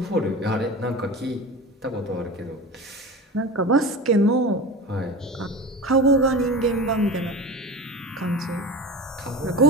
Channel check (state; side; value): normal; both; correlation 0.31